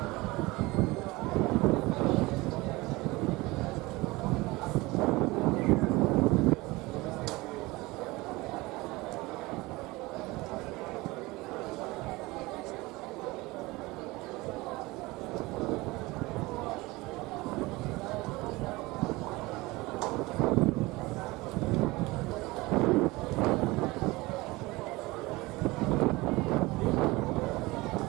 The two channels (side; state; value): left; quieter; 21.7 dB